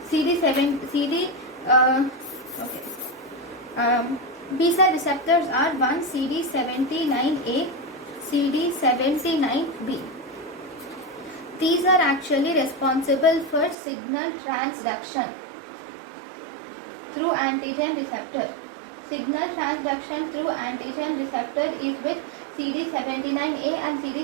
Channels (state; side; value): drops out; left; at 13.8 s